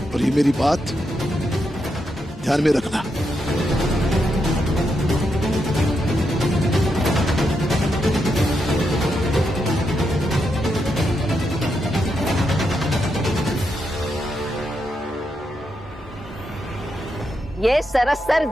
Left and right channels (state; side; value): normal; both; correlation 0.82